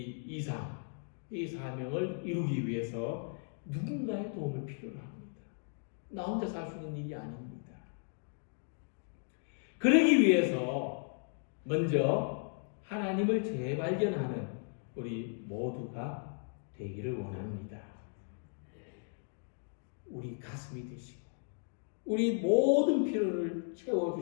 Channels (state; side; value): silent; right; 54 dB below the other